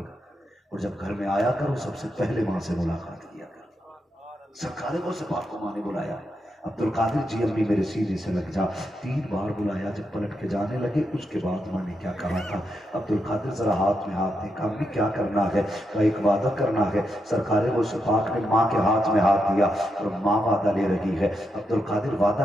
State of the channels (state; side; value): normal; both; correlation 0.83